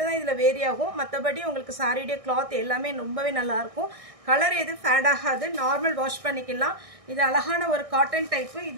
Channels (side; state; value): left; late; 1.6 ms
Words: தான் இதில் வேரி ஆகும். மற்றபடி உங்களுக்கு சாரியுடைய கிளாத் எல்லாமே ரொம்பவே நல்லாயிருக்கும். கலர் எதுவும் ஃபேட் ஆகாது. நார்மல் வாஷ் பண்ணிக்கலாம். இது அழகான ஒரு காட்டன் டைப்பு.